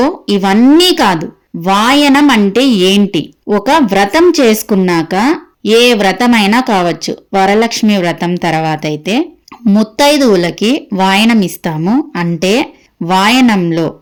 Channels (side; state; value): both; identical; correlation 1.00